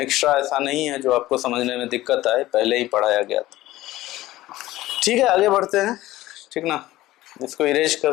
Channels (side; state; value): right; quieter; 16.4 dB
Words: ऐसा नहीं है जो आपको समझने में दिक्कत आए, पहले ही पढ़ाया गया था। ठीक है, आगे बढ़ते हैं, ठीक ना। इसको इरेज